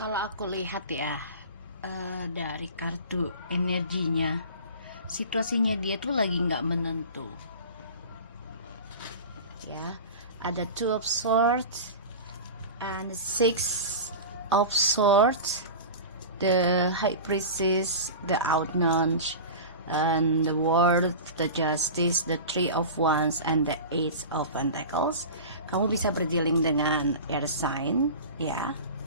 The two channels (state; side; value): inverted; both; correlation -0.32